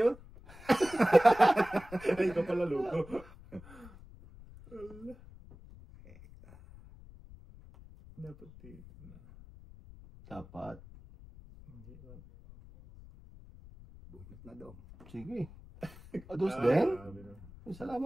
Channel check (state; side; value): noise; left; rumble, 19 dB below the sound